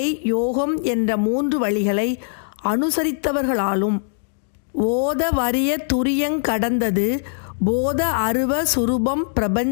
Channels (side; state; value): right; silent; digital silence